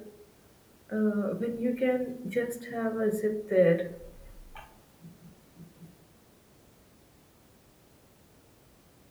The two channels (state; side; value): identical; both; correlation 1.00